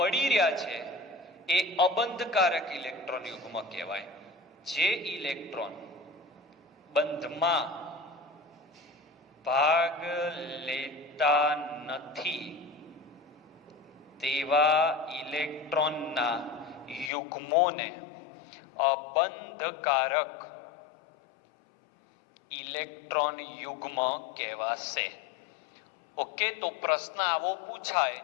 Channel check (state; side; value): drops out; right; at 17.1 s